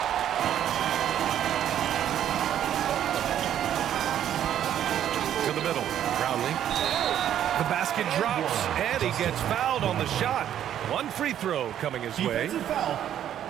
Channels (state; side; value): quieter; left; 10.5 dB